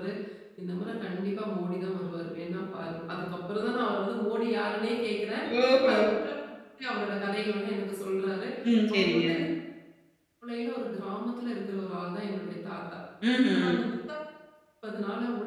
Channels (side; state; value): both; identical; correlation 1.00